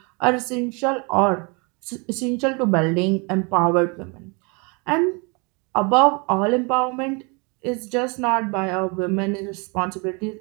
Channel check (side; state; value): left; quieter; 31.3 dB